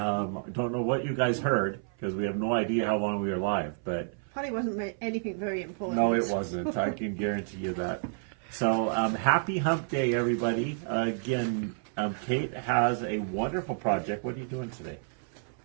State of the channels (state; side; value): silent; left; 57 dB below the other